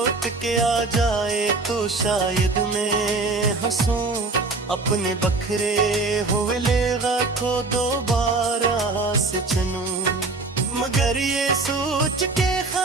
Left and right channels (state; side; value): quieter; left; 3.5 dB